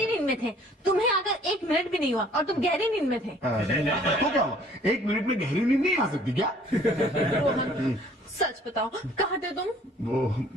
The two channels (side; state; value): both; normal; correlation 0.56